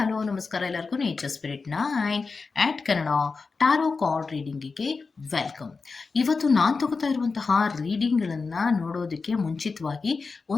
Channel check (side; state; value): right; quieter; 4.5 dB